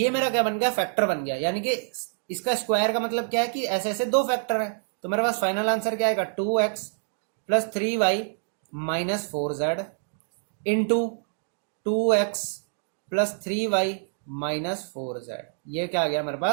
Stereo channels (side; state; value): left; silent; digital silence